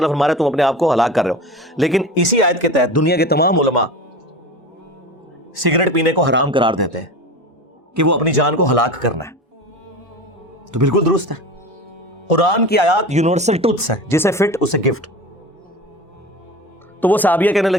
فرما رہا ہے تم اپنے آپ کو ہلاک کر رہے ہو. لیکن اسی آیت کے تحت دنیا کے تمام علماء سگریٹ پینے کو حرام قرار دیتے ہیں کہ وہ اپنی جان کو ہلاک کرنا ہے. تو بالکل درست ہے, قرآن کی آیات یونیورسل ٹروتھس ہے, جسے فٹ اسے گفٹ. تو وہ صحابیہ کہنے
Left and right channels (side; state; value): both; normal; correlation 0.32